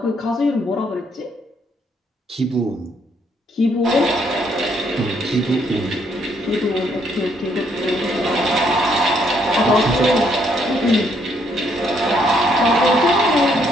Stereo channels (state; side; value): normal; both; correlation 0.71